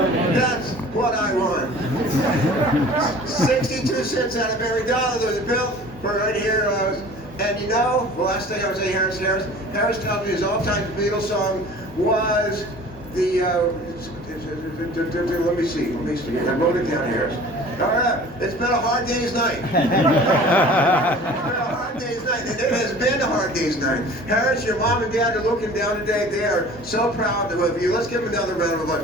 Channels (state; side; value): normal; both; correlation 0.45